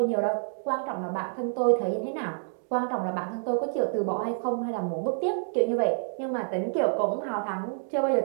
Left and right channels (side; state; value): left; silent; digital silence